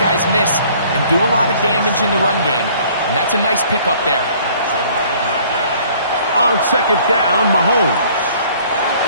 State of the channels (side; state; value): both; inverted; correlation -0.56